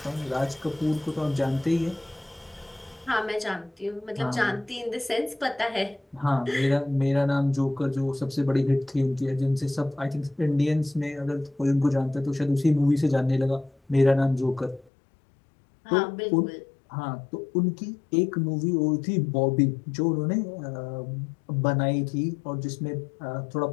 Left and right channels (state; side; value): drops out; right; at 14.9 s